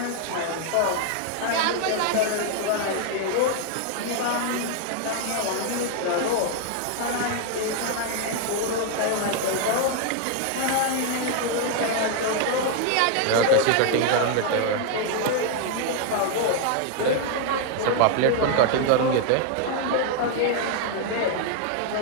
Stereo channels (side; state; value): both; different; correlation 0.00